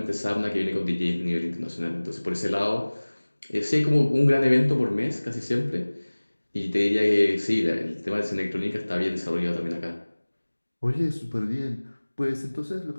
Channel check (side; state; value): both; inverted; correlation -1.00